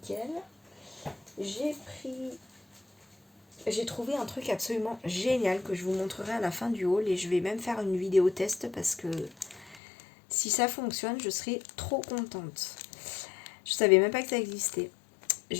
J'ai trouvé un truc absolument génial que je vous montrerai à la fin du haul et je vais même faire une vidéo test parce que si ça fonctionne, je serai trop contente. Je savais même pas que ça existait.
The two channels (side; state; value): right; drops out; at 9.8 s